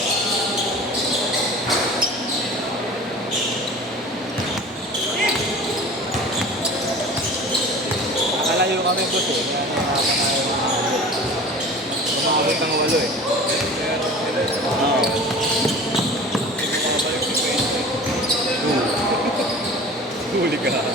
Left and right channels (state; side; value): normal; both; correlation 0.40